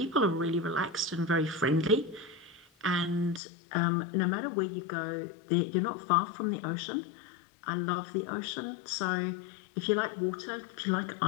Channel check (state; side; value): drops out; right; at 3.4 s